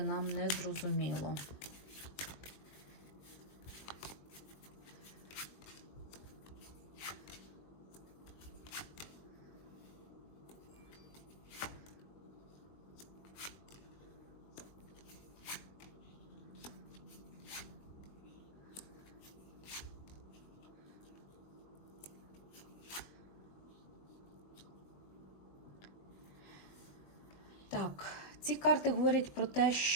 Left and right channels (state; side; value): late; right; 21 ms